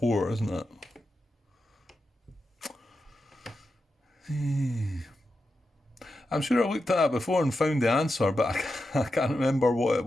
isn't it? I'm sure I looked at that before and found the answer, but I can't remember what it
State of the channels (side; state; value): both; normal; correlation 0.89